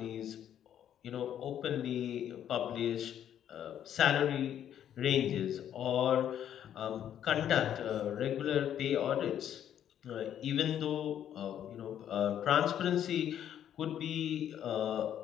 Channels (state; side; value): quieter; right; 10.1 dB